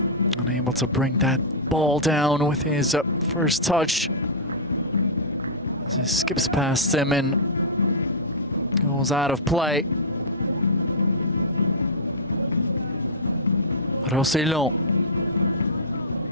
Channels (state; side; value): normal; both; correlation -0.13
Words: Unable to bring that ball down with his first touch. As he skips past him and goes out of play. Rossellon.